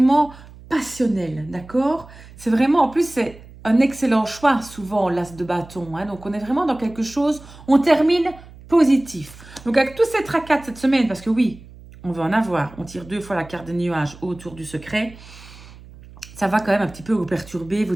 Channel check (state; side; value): noise; right; hum, 20 dB below the sound